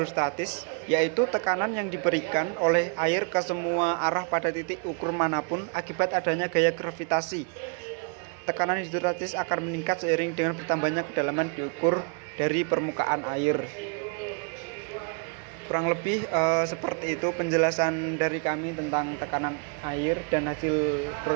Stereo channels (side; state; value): left; quieter; 38.2 dB